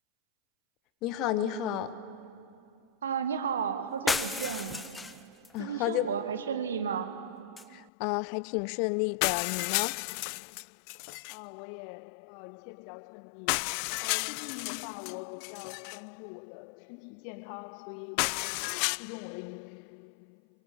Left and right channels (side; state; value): right; drops out; at 7.9 s